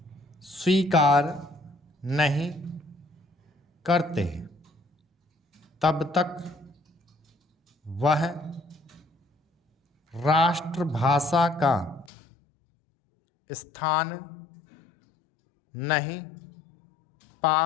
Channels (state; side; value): drops out; right; at 12.1 s